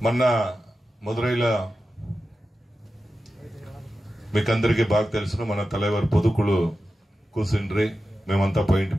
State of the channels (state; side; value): normal; both; correlation 0.92